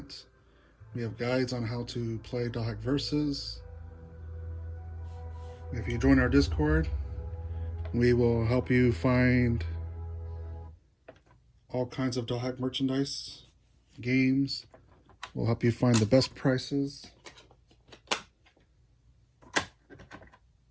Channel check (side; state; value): both; identical; correlation 1.00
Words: We have guides on how to play Dothack Versus. If you join our Discord, we will help you find all kinds of Dothack merchandise, games. We'll help you find the best prices.